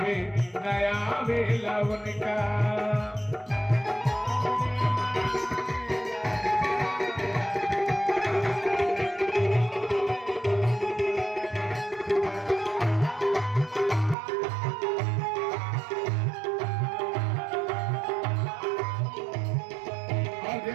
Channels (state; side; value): drops out; left; at 14.2 s